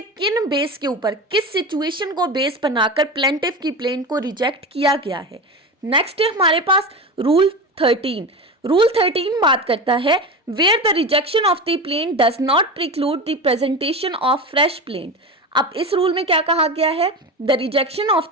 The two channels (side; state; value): both; normal; correlation 0.24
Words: किन बेस के ऊपर, किस सिचुएशन को बेस बनाकर प्लेंटिफ की प्लेंट को रिजेक्ट किया गया है। नेक्स्ट है हमारे पास रूल 13। रूल 13 बात करता है where the rejection of the plaint does not preclude the presentation of fresh plaint. अब इस रूल में क्या कहा गया है? The rejection of